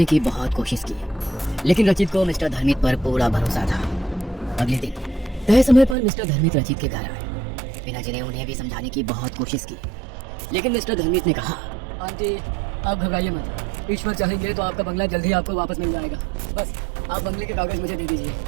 की बहुत कोशिश की, लेकिन रचित को मिस्टर धर्मिक पर पूरा भरोसा था। अगले दिन तय समय पर मिस्टर धर्मिक रचित के घर आए। वीणा जी ने उन्हें भी समझाने की बहुत कोशिश की, लेकिन मिस्टर धर्मिक ने कहा, आंटी आप घबराइए मत, ईश्वर चाहेंगे तो आपका बंगला जल्दी आपको वापस मिल जाएगा। बस आप बंगले के कागज मुझे दे दीजिए।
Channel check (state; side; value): drops out; left; at 6.0 s